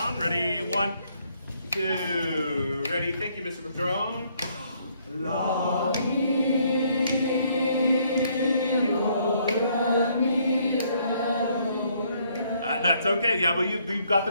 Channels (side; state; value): both; inverted; correlation -0.68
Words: Ready? 1, 2. Ready? Thank you, Mr. Patron. La, mi, do, re, mi, re, do, re. That's okay. Yeah, but we've got